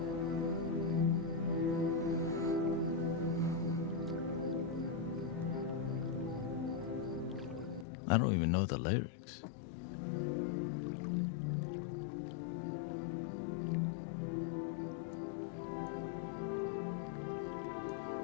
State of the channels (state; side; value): drops out; right; at 7.9 s